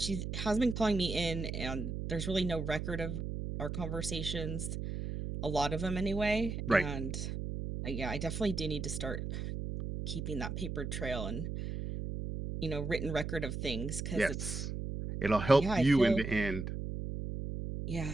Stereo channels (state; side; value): noise; right; hum, 4 dB below the sound